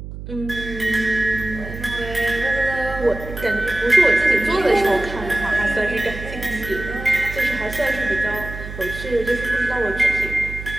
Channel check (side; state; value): right; noise; hum, 10 dB below the sound